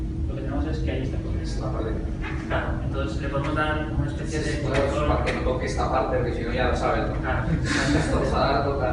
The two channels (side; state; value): both; identical; correlation 1.00